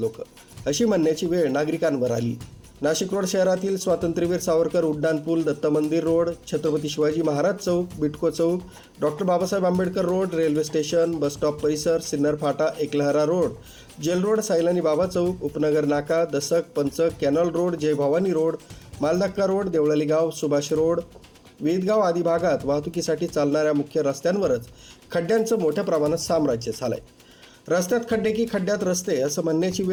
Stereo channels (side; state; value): both; identical; correlation 1.00